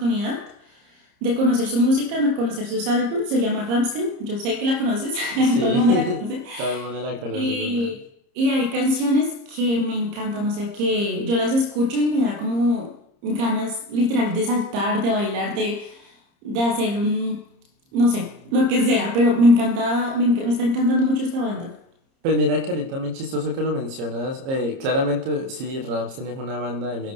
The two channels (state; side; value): late; left; 30 ms